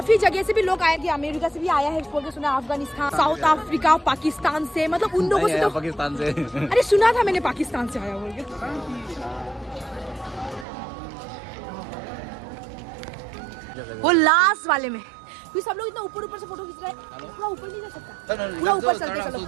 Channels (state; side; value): drops out; left; at 10.7 s